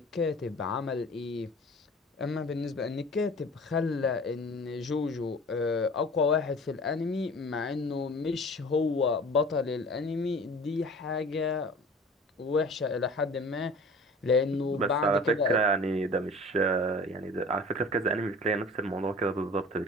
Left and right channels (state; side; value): normal; both; correlation 0.43